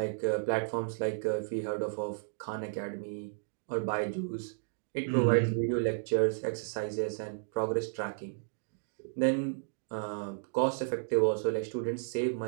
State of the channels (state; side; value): silent; left; digital silence